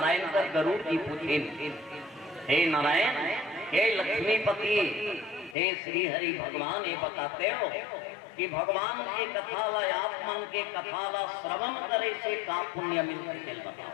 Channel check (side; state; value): right; drops out; at 5.6 s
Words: कर गरुड़ जी पूछे, हे नारायण, हे लक्ष्मीपति, हे श्री हरि भगवान, ये बताते हो कि भगवान के कथा ला, आप मन के कथा ला श्रवण करे से का पुण्य मिलते, दिल बताओ।